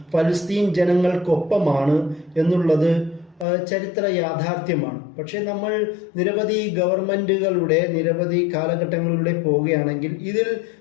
ഫലസ്തീൻ ജനങ്ങൾക്കൊപ്പമാണ് എന്നുള്ളത് ചരിത്ര യാഥാർത്ഥ്യമാണ്. പക്ഷെ നമ്മൾ നിരവധി ഗവൺമെന്റുകളുടെ നിരവധി കാലഘട്ടങ്ങളിലൂടെ പോവുകയാണെങ്കിൽ ഇതിൽ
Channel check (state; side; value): drops out; right; at 3.5 s